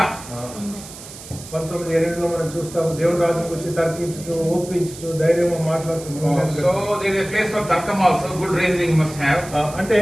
19:8లో మనం చూస్తాము, దేవుని రాజ్యం గురించి తర్కించుచు, ఒప్పించుచు, ధైర్యంగా మాట్లాడుతున్నాం. So there is a place for తర్కం also. Good reasoning must have. అంటే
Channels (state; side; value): noise; right; hiss, 15 dB below the sound